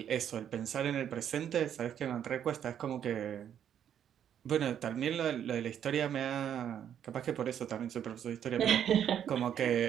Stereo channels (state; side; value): quieter; left; 9.4 dB